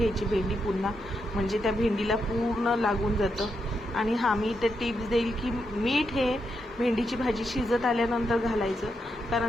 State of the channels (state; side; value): normal; both; correlation 0.83